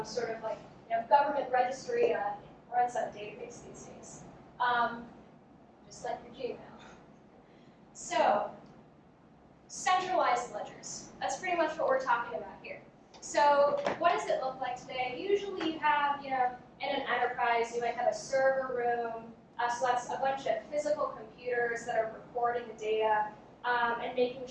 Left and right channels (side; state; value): both; identical; correlation 1.00